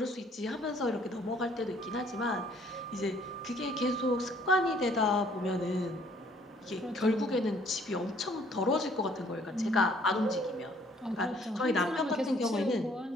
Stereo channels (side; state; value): both; normal; correlation 0.61